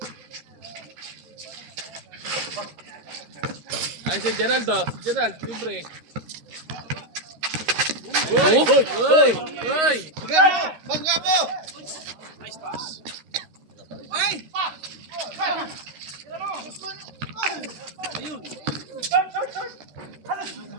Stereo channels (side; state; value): left; late; 13 ms